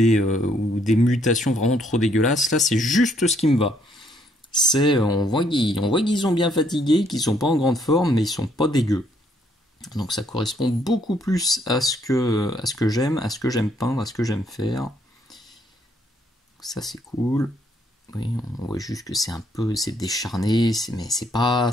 des mutations vraiment trop dégueulasses. Là c'est juste ce qui me va. On voit qu'ils sont bien fatigués, qu'ils sont pas en grande forme, mais ils sont pas dégueux. Donc ça correspond beaucoup plus à ce que j'aime, à ce que j'aime peindre, à ce que j'aime faire. Ça c'est cool. Oui, on voit juste que c'est décharné, mais c'est pas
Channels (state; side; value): normal; both; correlation 0.69